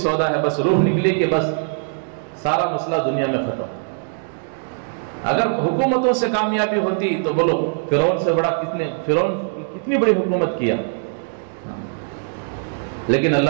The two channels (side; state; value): left; silent; 65 dB below the other